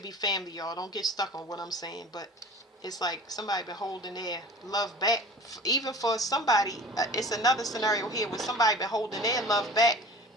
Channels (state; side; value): normal; both; correlation 0.42